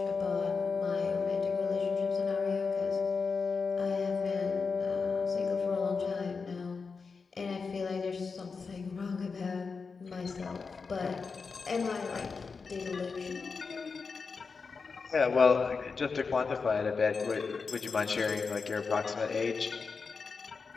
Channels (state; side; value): quieter; right; 4.9 dB